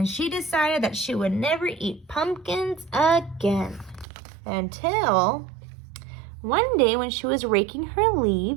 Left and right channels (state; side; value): drops out; left; at 4.0 s